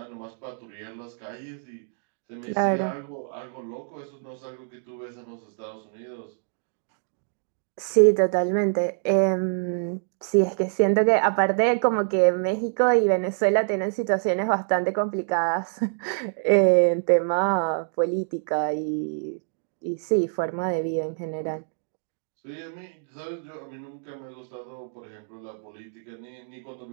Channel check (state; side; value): silent; left; digital silence